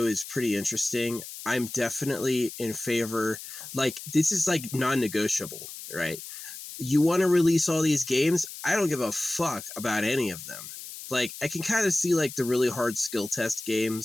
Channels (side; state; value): left; noise; hiss, 12 dB below the sound